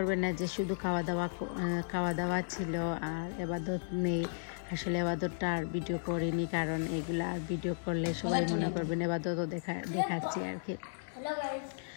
না যে শুধু খাওয়া দাওয়া ছিল আর ইবাদত নেই। আসলে ইবাদতটা আর ভিডিও করিনি, কারণ এগুলা আর ভিডিও করলে সবাই মনে করবেন ইবাদতও দেখাচ্ছি আর কি।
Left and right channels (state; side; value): silent; right; digital silence